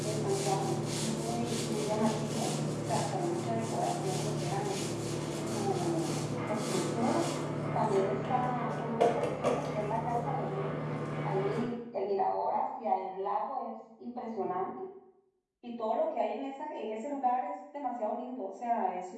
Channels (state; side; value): identical; both; correlation 1.00